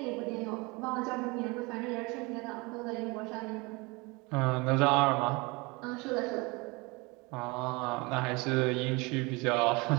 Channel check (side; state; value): left; quieter; 26.4 dB